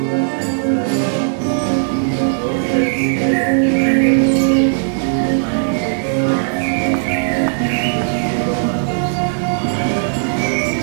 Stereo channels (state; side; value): silent; left; digital silence